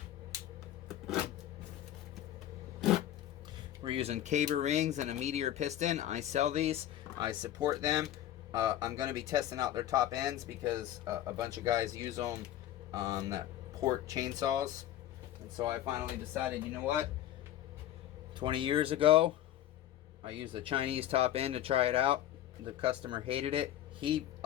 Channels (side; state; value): right; quieter; 12.3 dB